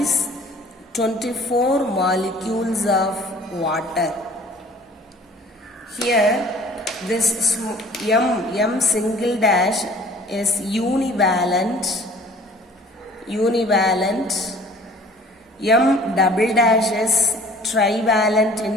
24 molecules of water. Here this M single dash is univalent, M double dash is trivalent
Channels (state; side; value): normal; both; correlation 0.50